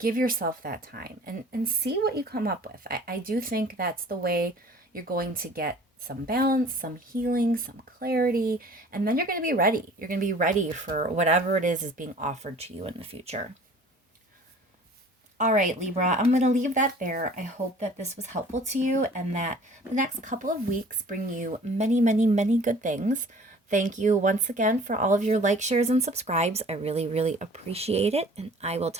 yourself that time and see what you come up with. I do think that's the way you're going to get some balance, some healing, some clarity, and then you're going to be ready. You're going to be ready for whatever it is being offered to you in the future. All right, Libra, I'm going to leave that there. I hope that this was helpful to you and that the next couple of weeks bring you many, many, many good things. Thank you once again for all of your likes, shares, and subscribes. I really, really appreciate it. And I will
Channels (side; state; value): both; normal; correlation 0.49